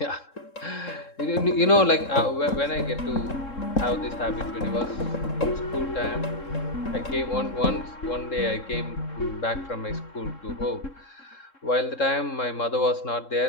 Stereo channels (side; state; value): right; late; 3.7 ms